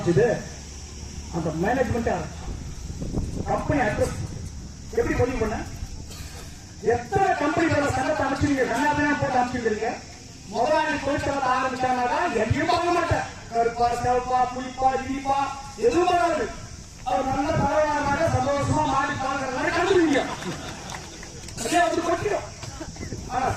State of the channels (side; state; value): both; identical; correlation 1.00